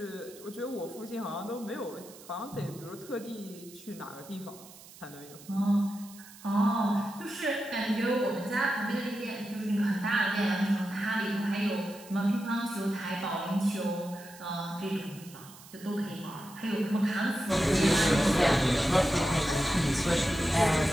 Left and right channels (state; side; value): noise; right; hiss, 19 dB below the sound